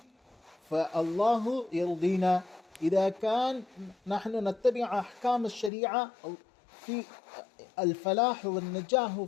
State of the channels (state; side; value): drops out; right; at 5.7 s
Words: فالله يرضينا، إذا كان نحن نتبع أحكام الشريعة في الفلاح والنجاح